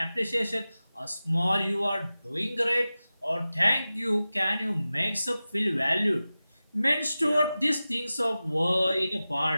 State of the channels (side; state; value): both; inverted; correlation -0.95